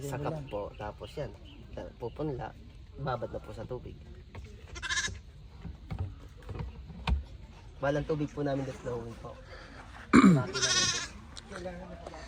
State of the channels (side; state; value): both; identical; correlation 1.00